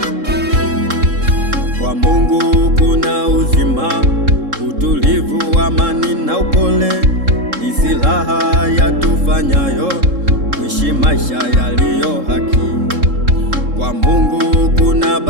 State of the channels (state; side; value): late; left; 3.7 ms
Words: Kwa Mungu kuna uzima, utulivu, amani na upole, ni silaha yatufanyayo kuishi maisha yaliyo haki. Kwa Mungu kuna